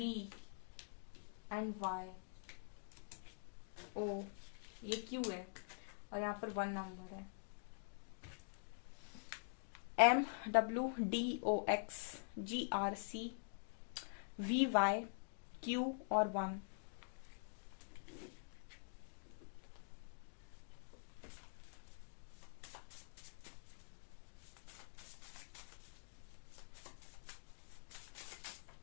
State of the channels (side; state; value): right; silent; digital silence